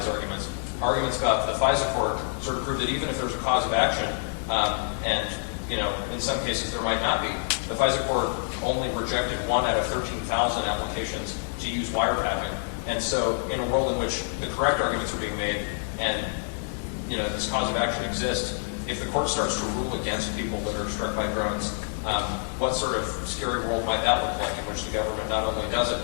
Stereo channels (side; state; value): right; silent; digital silence